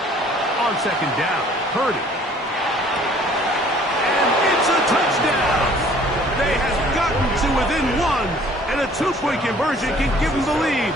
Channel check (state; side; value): normal; both; correlation 0.55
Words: On second down, Purdy. And it's a touchdown! They have gotten to within 1, and a 2-point conversion can give them the lead